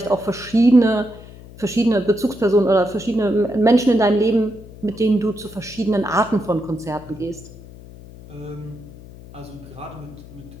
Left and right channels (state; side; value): noise; left; hum, 18 dB below the sound